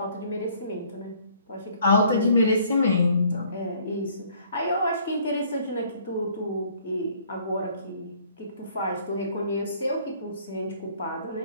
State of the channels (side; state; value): both; inverted; correlation -0.59